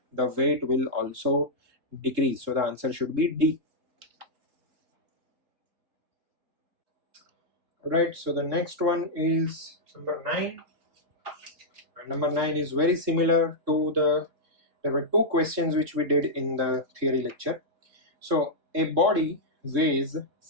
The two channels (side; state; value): left; late; 3.6 ms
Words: The weight will also decrease. So the answer should be D. Alright, so the next one is number 9. And number 9 is very similar to there were two questions which we did in the theory lecture. So a body weighs